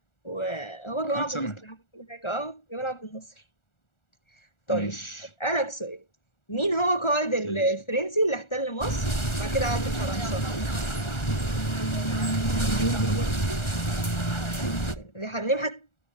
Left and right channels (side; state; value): right; late; 1.4 ms